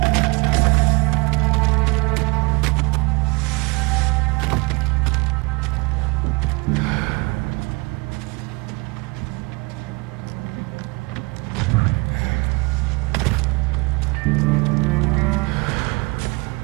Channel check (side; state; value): left; quieter; 27.4 dB